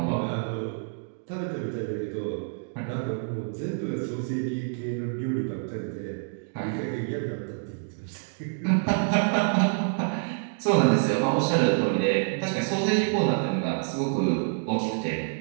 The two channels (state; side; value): silent; left; digital silence